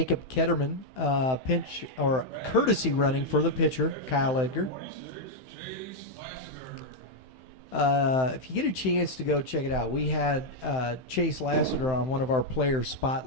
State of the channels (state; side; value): late; right; 15 ms